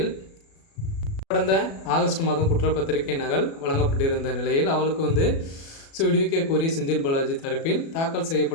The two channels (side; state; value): right; late; 36 ms